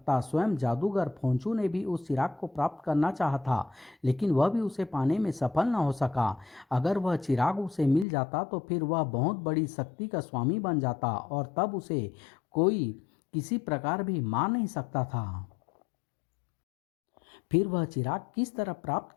स्वयं जादूगर फोंचू ने भी उस चिराग को प्राप्त करना चाहा था, लेकिन वह भी उसे पाने में सफल न हो सका। अगर वह चिराग उसे मिल जाता तो फिर वह बहुत बड़ी शक्ति का स्वामी बन जाता और तब उसे कोई किसी प्रकार भी मार नहीं सकता था। फिर वह चिराग किस तरह प्राप्त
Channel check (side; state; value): right; drops out; at 8.1 s